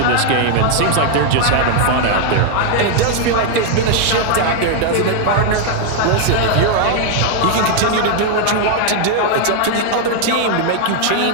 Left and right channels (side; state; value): both; different; correlation 0.00